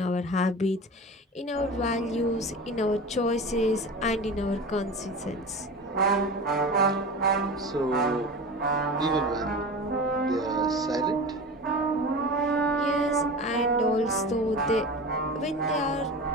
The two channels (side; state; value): both; normal; correlation 0.31